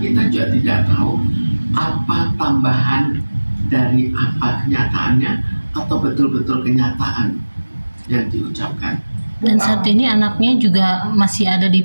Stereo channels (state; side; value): inverted; both; correlation -1.00